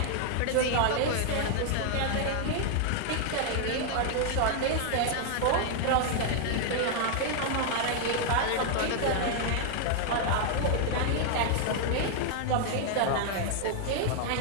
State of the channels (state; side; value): different; both; correlation 0.00